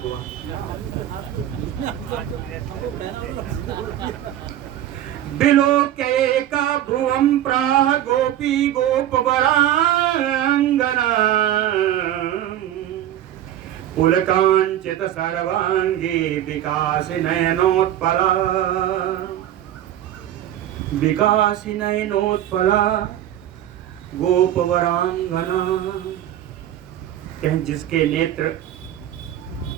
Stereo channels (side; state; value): left; quieter; 12.0 dB